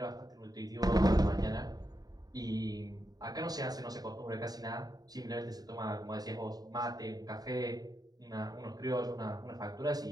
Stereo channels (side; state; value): left; late; 0.18 ms